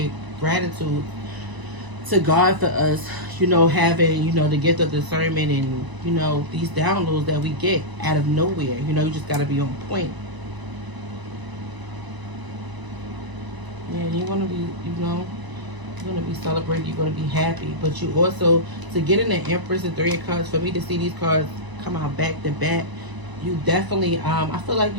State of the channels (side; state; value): left; late; 1.0 ms